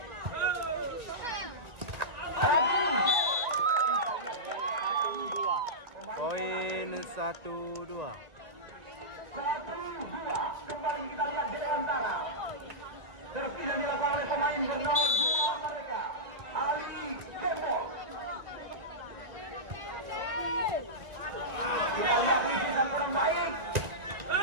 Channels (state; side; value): late; left; 1.9 ms